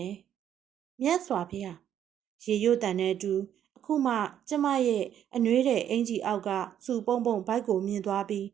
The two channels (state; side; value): quieter; left; 10.0 dB